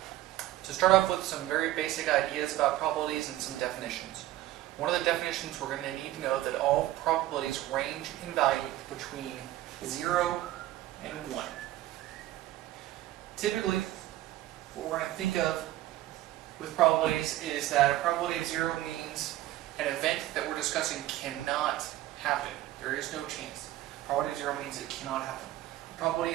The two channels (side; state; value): left; quieter; 15.2 dB